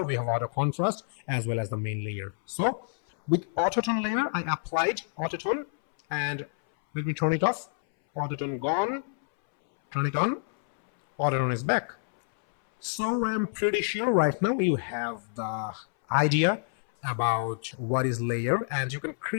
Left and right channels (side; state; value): right; silent; 59 dB below the other